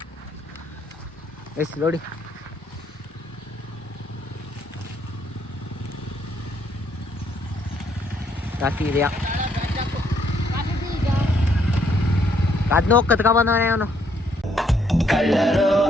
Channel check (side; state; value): both; normal; correlation 0.70